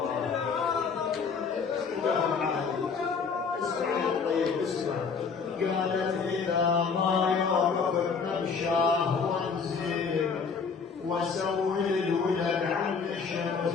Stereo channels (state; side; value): quieter; right; 5.5 dB